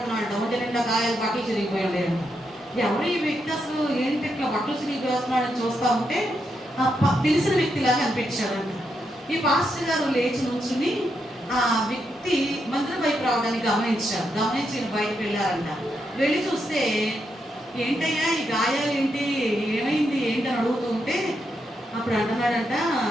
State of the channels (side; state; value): both; normal; correlation 0.82